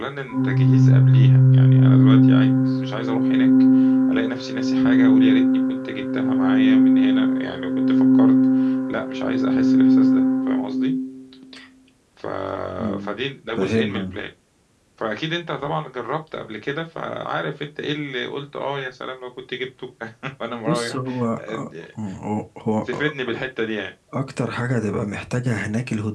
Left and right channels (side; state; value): both; identical; correlation 1.00